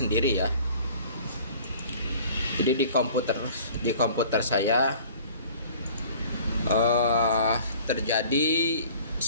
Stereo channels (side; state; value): both; inverted; correlation -0.48